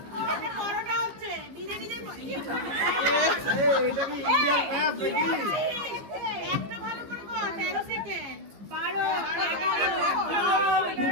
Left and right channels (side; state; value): left; late; 15 ms